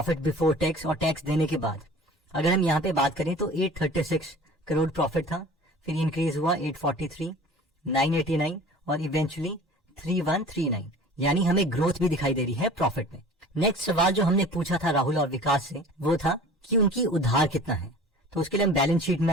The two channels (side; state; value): both; normal; correlation 0.43